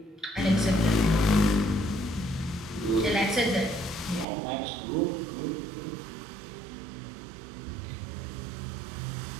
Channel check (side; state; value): left; drops out; at 4.2 s